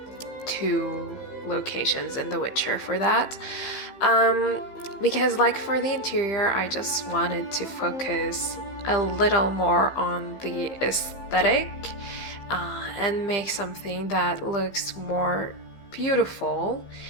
two locations in The Witcher for that, because like for the interior, I just wanted to focus a little more on the aesthetic and make something that looks more beautiful,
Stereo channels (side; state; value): right; late; 15 ms